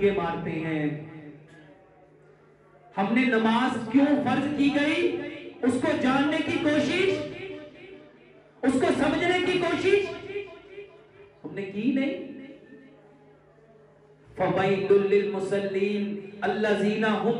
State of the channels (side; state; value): both; identical; correlation 1.00